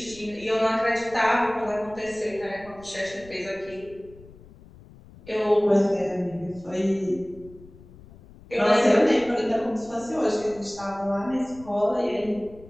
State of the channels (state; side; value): noise; left; rumble, 21 dB below the sound